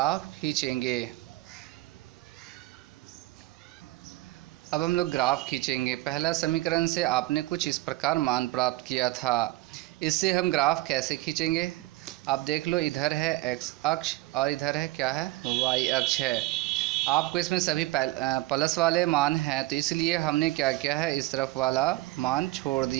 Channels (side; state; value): left; quieter; 19.0 dB